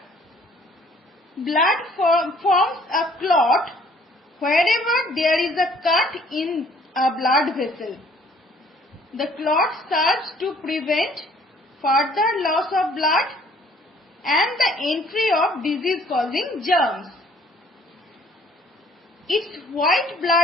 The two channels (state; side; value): normal; both; correlation 0.58